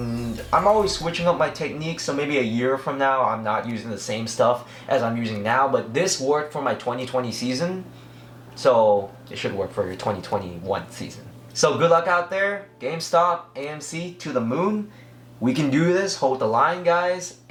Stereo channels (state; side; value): identical; both; correlation 1.00